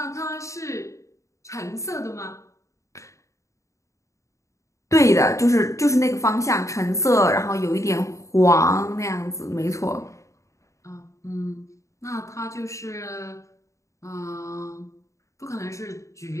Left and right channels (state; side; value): late; right; 0.15 ms